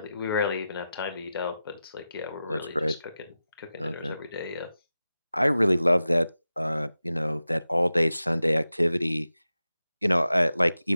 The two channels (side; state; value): both; inverted; correlation -0.93